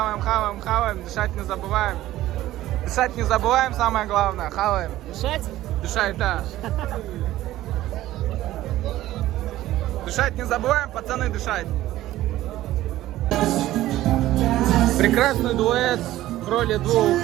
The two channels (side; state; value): left; quieter; 15.0 dB